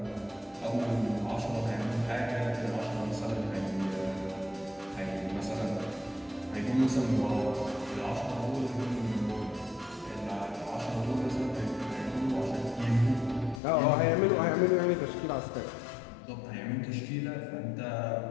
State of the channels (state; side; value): drops out; right; at 13.6 s